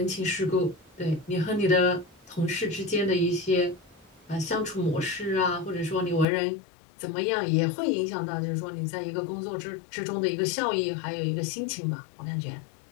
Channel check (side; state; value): right; drops out; at 6.2 s